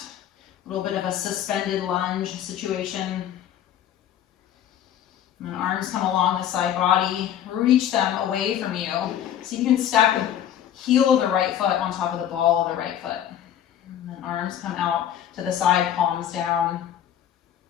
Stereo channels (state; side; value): quieter; right; 10.4 dB